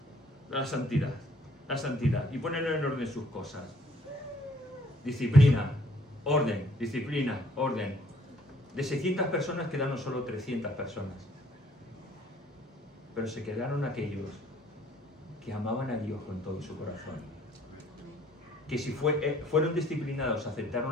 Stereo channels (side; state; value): both; normal; correlation 0.61